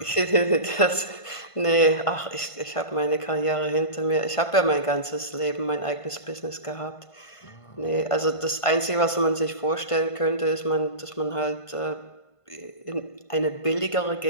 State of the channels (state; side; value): late; right; 1.5 ms